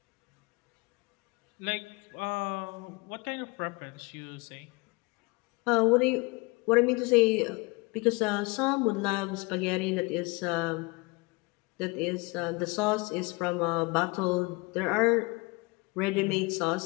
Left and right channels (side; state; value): right; quieter; 26.8 dB